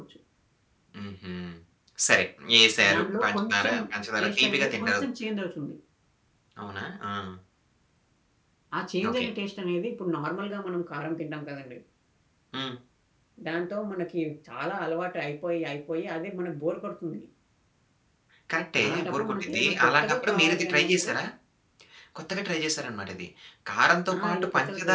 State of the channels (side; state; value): both; identical; correlation 1.00